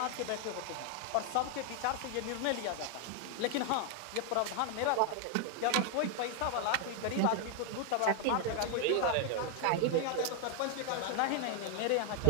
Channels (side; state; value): both; different; correlation 0.00